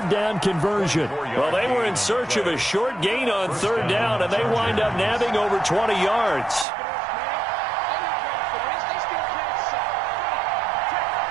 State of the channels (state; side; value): drops out; left; at 6.7 s